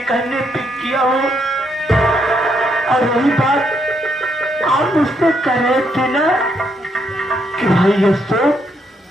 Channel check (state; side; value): normal; both; correlation 0.76